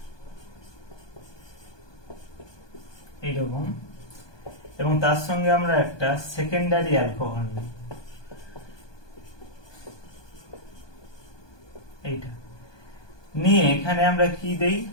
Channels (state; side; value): late; right; 1.2 ms